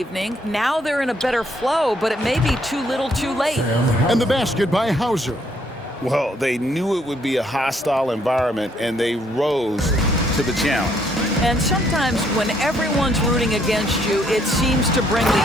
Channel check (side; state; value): both; normal; correlation 0.69